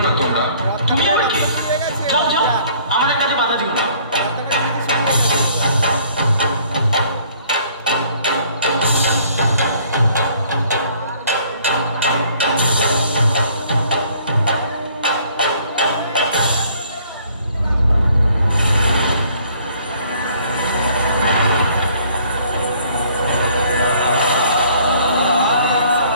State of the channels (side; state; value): both; inverted; correlation -0.59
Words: না তোমরা। তুমি আর কে? যাও যাও, আমাদের কাছে বাধা দিও না।